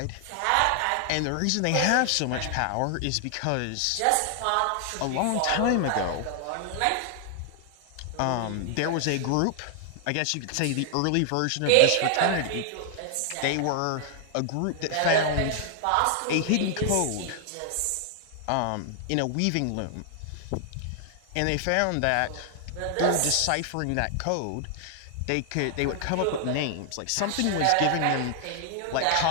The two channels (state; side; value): different; both; correlation 0.00